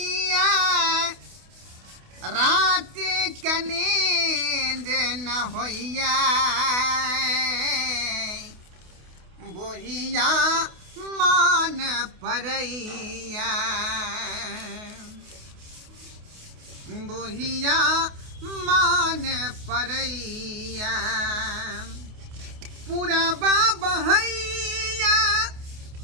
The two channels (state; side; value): late; left; 28 ms